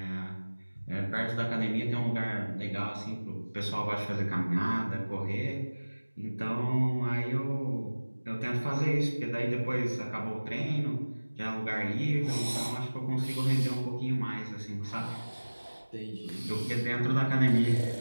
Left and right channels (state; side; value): inverted; both; correlation -1.00